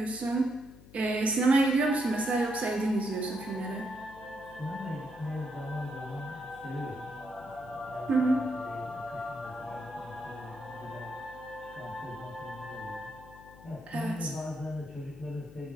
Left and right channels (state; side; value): noise; left; hum, 20 dB below the sound